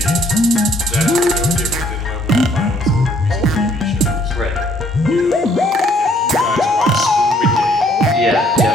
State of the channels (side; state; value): both; normal; correlation 0.64